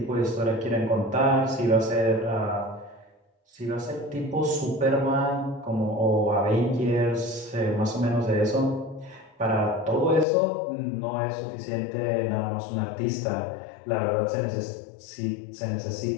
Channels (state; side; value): drops out; right; at 10.2 s